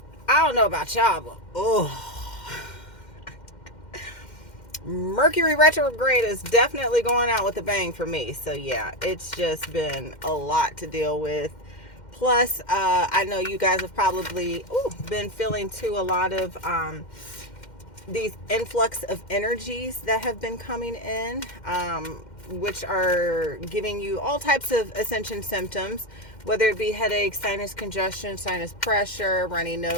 I don't know about y'all, but Mercury retrograde is definitely going out with a bang for me. So yeah, it's just been a lot to deal with. Plus, I know you guys have probably been feeling too a lot of these influx of energies that have been coming in, which are giving you all types of ascension symptoms, whether it be headache, sinus congestion, sinus pressure, runny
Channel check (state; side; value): late; right; 2.1 ms